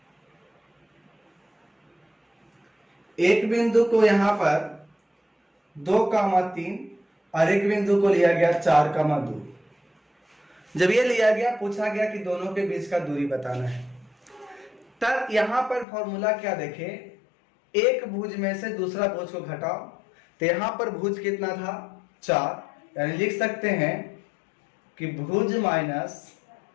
एक बिंदु को यहां पर 2,3 और एक बिंदु को लिया गया 4,2। जब ये लिया गया पूछा गया कि दोनों के बीच का दूरी बताना है, तब यहां पर फॉर्मूला क्या देखे, एक भुज में से दूसरा भुज को घटाओ, तो यहां पर भुज कितना था 4, यानी लिख सकते हैं कि भुज माइनस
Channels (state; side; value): drops out; right; at 15.9 s